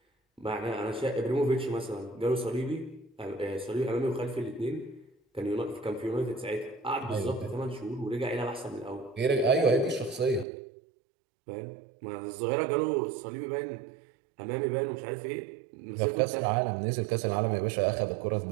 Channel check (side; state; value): left; drops out; at 10.5 s